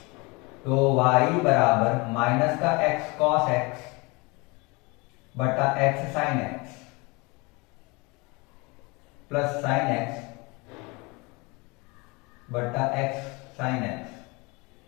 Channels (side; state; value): right; quieter; 26.9 dB